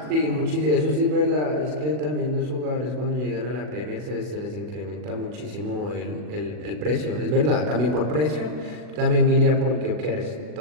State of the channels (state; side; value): late; left; 40 ms